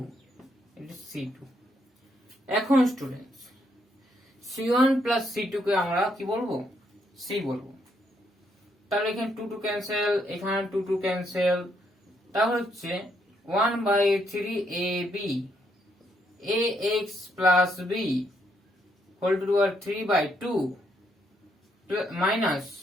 c2। এখন স্টুডেন্টস c1 প্লাস c2 কে আমরা কি বলবো? c বলবো। তাহলে এখানে 2 ক্যান্সেল, এখানে 2 ক্যান্সেল, তাহলে হচ্ছে 1/3ab ax plus b whole to the power 3/2 minus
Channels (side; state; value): both; normal; correlation 0.74